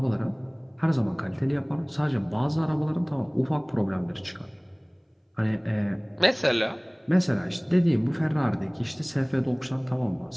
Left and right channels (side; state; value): both; identical; correlation 1.00